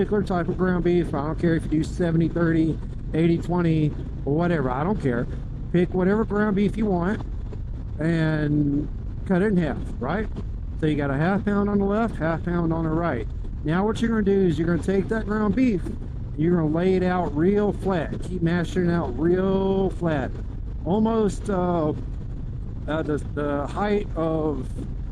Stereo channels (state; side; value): identical; both; correlation 1.00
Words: type of ground beef, I don't care if you do 70-30, 80-20, or whatever, I don't care. Pick whatever ground beef you want and cut it in half, right? So you got a half pound on the left, half pound on the right. Now what you're going to do is you're going to take that ground beef, you're going to lay it out real flat. Keep mashing it out real flat, almost the height of,